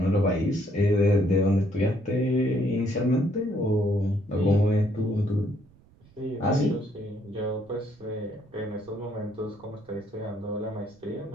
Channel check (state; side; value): noise; right; rumble, 28 dB below the sound